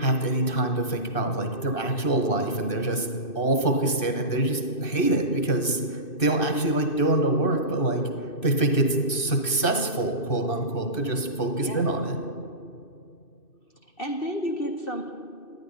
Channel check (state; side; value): late; right; 2.6 ms